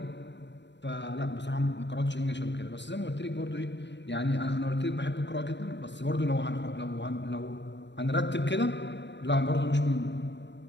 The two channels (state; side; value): late; right; 0.52 ms